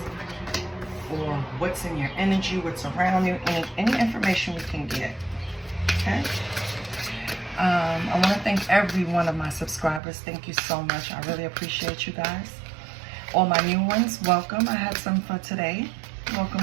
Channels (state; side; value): drops out; left; at 10.0 s